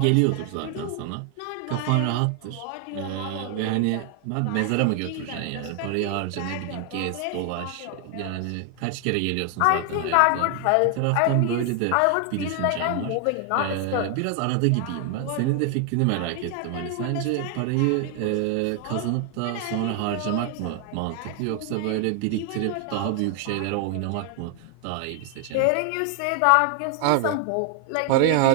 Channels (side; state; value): both; different; correlation 0.00